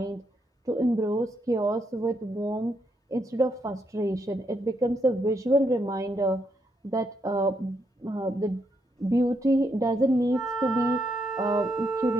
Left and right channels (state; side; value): normal; both; correlation 0.78